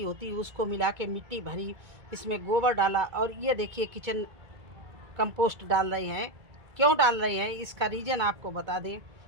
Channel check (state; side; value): late; left; 2.3 ms